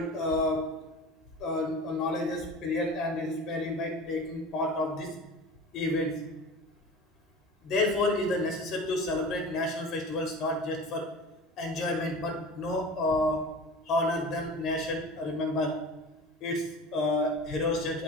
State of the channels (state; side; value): normal; both; correlation 0.36